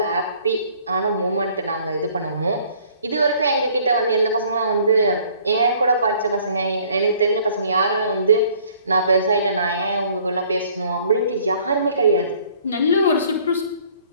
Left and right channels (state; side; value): inverted; both; correlation -0.57